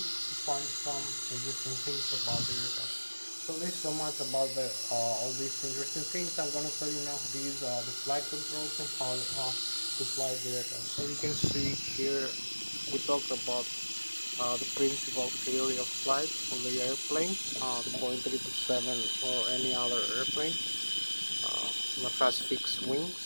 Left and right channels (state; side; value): inverted; both; correlation -1.00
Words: to find some interesting things about the aircraft. So this is so much about all these interesting things. I'm going to show you now how to use the flight controls and how to fly the aircraft. So you can see here we talked about the principal theory of flight for the airplane, the Boeing 777 or any other airplane that has fixed wings.